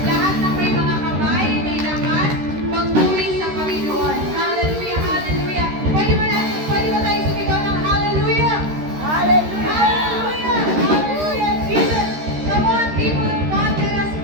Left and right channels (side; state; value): left; late; 13 ms